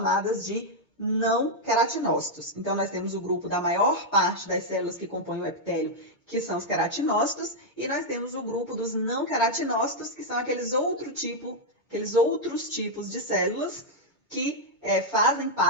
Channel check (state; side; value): normal; both; correlation -0.02